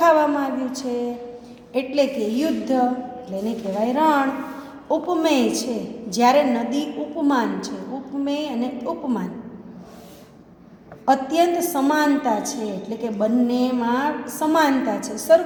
આવ્યું છે. એટલે કે યુદ્ધ એટલે એને કહેવાય રણ. ઉપમેય છે જ્યારે નદી ઉપમાન છે. ઉપમેય અને ઉપમાન અત્યંત સમાનતા છે, એટલે કે બંનેમાં સમાનતા છે,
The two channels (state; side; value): identical; both; correlation 1.00